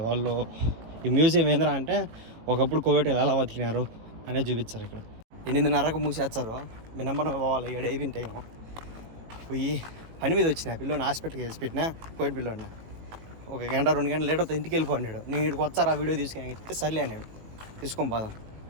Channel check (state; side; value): late; left; 18 ms